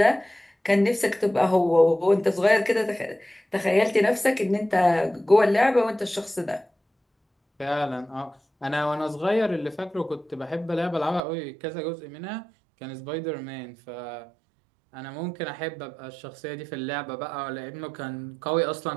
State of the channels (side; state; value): left; drops out; at 11.2 s